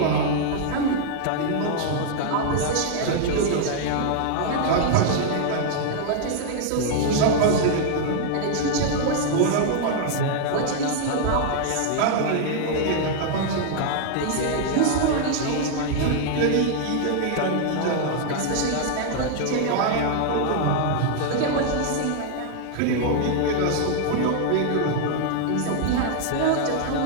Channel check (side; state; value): both; different; correlation 0.00